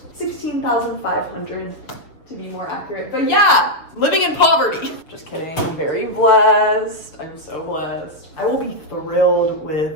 16,500 to be more accurate. But yeah, living in poverty. Just kidding. I'm very blessed. I'm so blessed. I will be thrilled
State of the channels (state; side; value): late; right; 6.8 ms